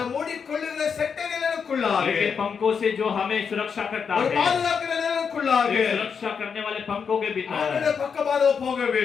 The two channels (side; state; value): right; quieter; 6.4 dB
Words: மூடிக்கொள்ளுகிற செட்டைகளுக்குள்ளாக, लेकिन पंखों से जो हमें सुरक्षा करता ஒரு है, பாதுகாக்கிற நிழலுக்குள்ளாக एक सुरक्षा करने वाले पंखों के भीतर அவருடைய பக்கமாக போக